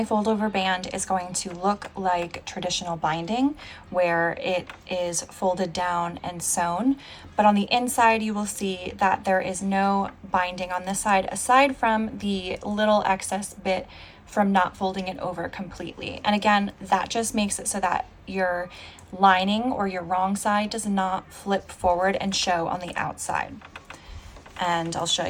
fold over band is going to look like traditional binding, where it is folded down and sewn. But on the inside, you will see that there is no binding on this side, aside from the little excess bit from not folding it over completely. And again, that just makes it so that your lining or your wrong side does not flip forward and show on the outside. And I'll show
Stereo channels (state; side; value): identical; both; correlation 1.00